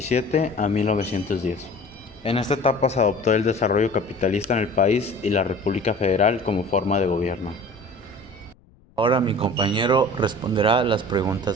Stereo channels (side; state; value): left; noise; rumble, 29 dB below the sound